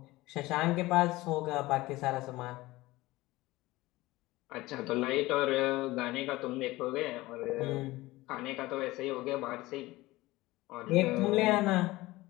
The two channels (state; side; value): quieter; right; 19.1 dB